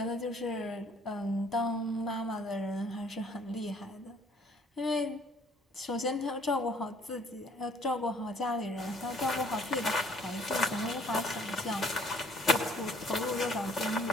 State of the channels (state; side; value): normal; both; correlation 0.60